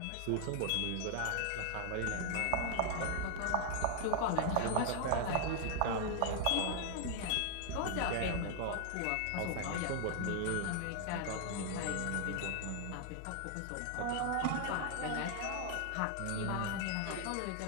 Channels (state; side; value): different; both; correlation 0.00